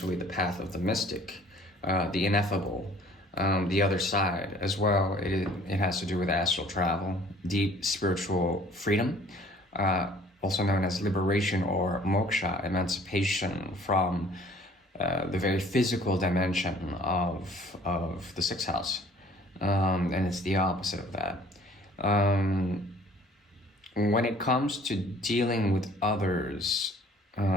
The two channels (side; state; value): both; normal; correlation 0.54